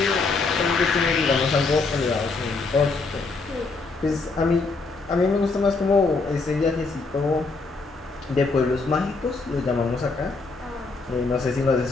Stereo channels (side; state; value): right; quieter; 3.9 dB